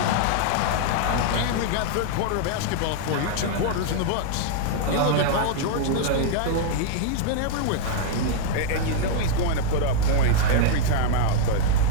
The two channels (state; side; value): different; both; correlation -0.01